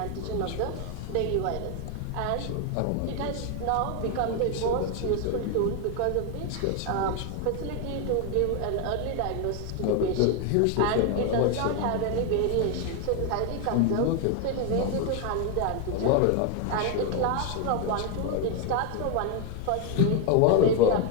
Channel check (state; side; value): different; both; correlation 0.01